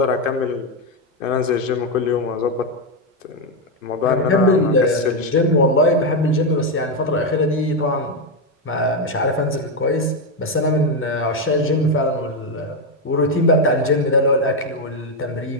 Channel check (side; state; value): both; normal; correlation 0.05